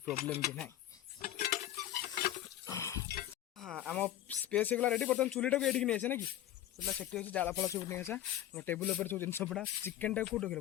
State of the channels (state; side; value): quieter; right; 12.8 dB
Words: भी ना हाँ आम स्पेस होगा रेडी बर्तमान चूलीटा को ये नहीं आसे ना कि चूला से अच्छी जाल फल सब नहीं आसा टेबुल पर सब जिन पड़ा चिकेन टाइम कौट रखे